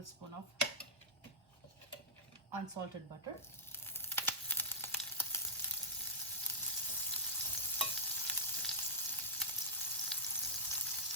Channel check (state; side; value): normal; both; correlation -0.15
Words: of unsalted butter.